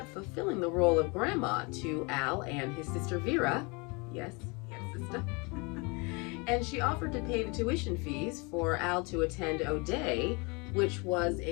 fulfilling the role of grandma to Al and his sister Vera. Yes, sister. And she offered to pay the tuition fees for Al to attend O'Day, which was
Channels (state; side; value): quieter; right; 29.4 dB